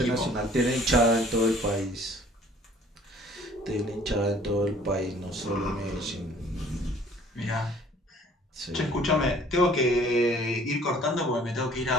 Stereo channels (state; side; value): normal; both; correlation 0.54